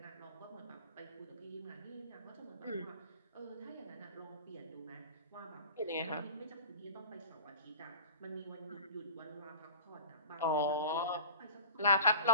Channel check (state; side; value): inverted; both; correlation -0.40